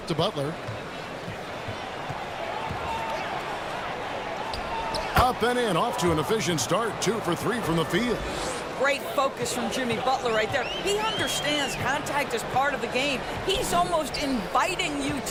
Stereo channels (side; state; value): both; identical; correlation 1.00